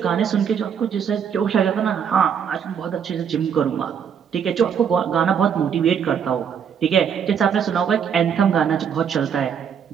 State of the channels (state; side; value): quieter; left; 7.7 dB